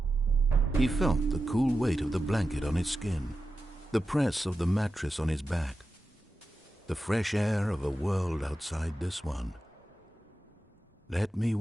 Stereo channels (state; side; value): normal; both; correlation 0.91